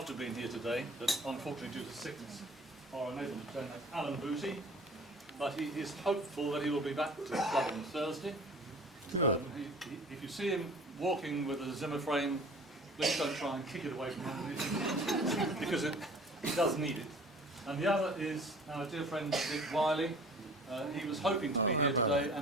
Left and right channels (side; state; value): both; normal; correlation 0.47